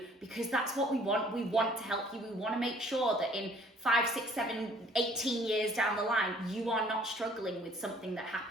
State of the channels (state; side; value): normal; both; correlation 0.57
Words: because that's what we want. We want to help you. We want to make sure that in 5, 6, 7, 18 years down the line, you are not struggling with something that